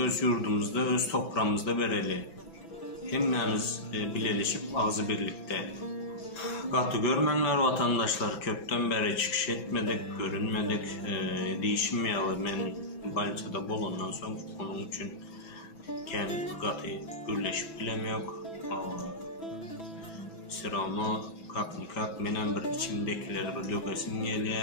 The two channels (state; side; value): late; right; 6.0 ms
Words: yurdumuzda, öz toprağımızda bereli. Hemmemiz birleşip ağzı birlikte. Katı görmenler vatandaşlar, köpten beri çıkış etmedik, görünmedik, değişmeyeli. Ben Banisa'da bulundan sonra onun için katı birleşip bilemiyor. Sıramı kak benim bir içimdekileri bir dökesim